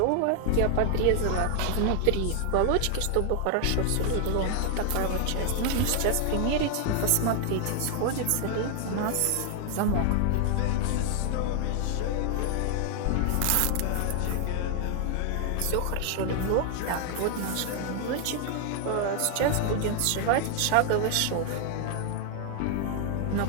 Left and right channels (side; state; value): both; different; correlation 0.00